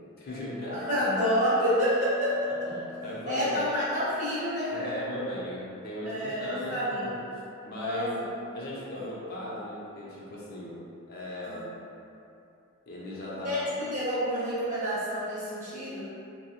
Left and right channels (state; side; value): normal; both; correlation 0.02